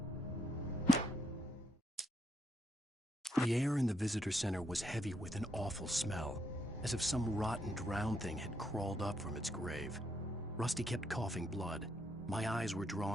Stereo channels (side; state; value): both; normal; correlation 0.76